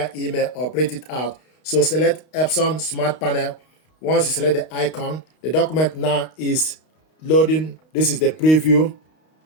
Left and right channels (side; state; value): right; late; 32 ms